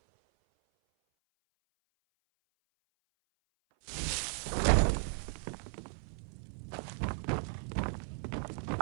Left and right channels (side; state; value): left; silent; 54 dB below the other